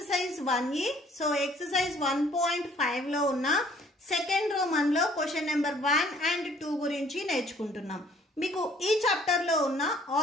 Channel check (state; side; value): normal; both; correlation 0.59